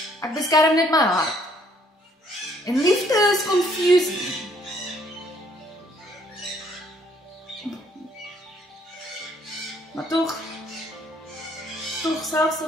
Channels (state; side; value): normal; both; correlation 0.64